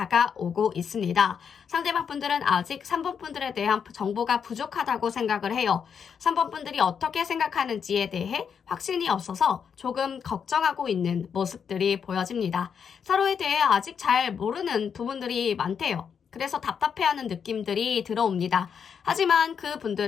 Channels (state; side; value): quieter; right; 7.0 dB